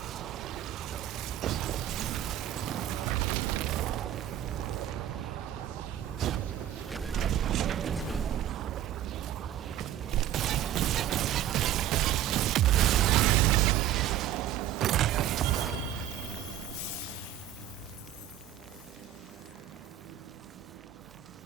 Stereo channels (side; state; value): left; quieter; 11.8 dB